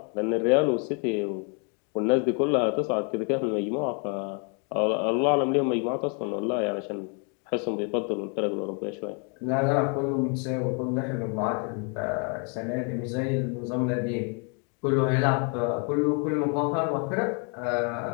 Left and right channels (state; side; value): quieter; right; 37.7 dB